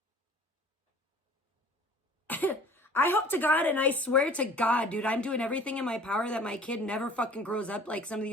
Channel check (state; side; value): normal; both; correlation 0.48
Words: I hope to God and I swear to God, dude, I'm doing everything in my power that my kid never fucking grows up like some of